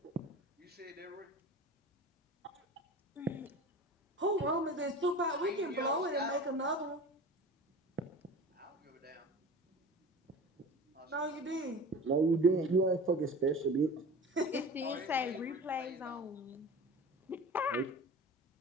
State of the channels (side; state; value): both; normal; correlation 0.36